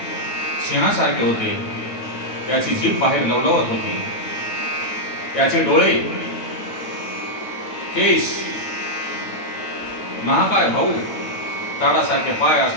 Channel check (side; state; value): right; late; 9.1 ms